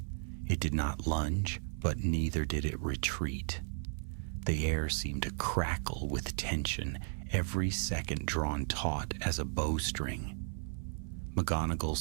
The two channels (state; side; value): silent; left; 54 dB below the other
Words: It did not lunge, but neither did it retreat. The air seemed to crackle with tension, every second drawn taut as a bowstring.